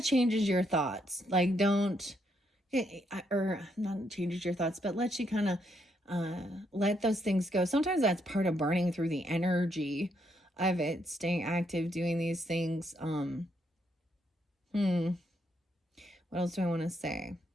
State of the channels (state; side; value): normal; both; correlation 0.75